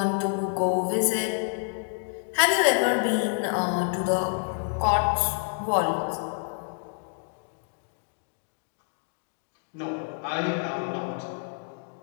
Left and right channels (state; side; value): silent; right; 59 dB below the other